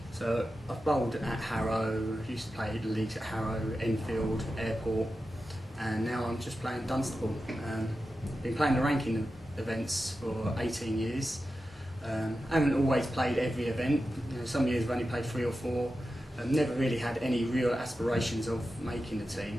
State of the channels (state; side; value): normal; both; correlation 0.92